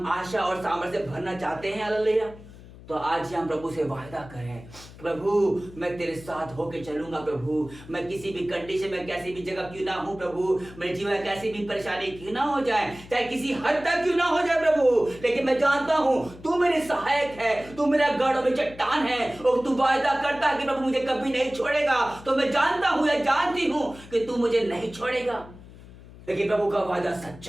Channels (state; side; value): noise; left; hum, 19 dB below the sound